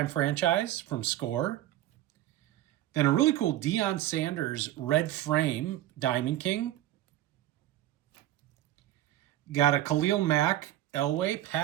Franchise from Score. Then a really cool Deion Sanders red frame Diamond King. Got a Khalil Mack, Elway,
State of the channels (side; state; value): left; quieter; 13.8 dB